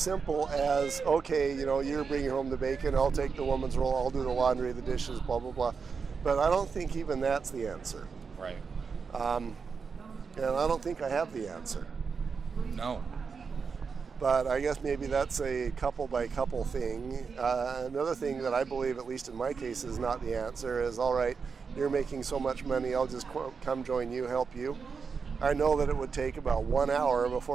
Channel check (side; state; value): left; quieter; 5.5 dB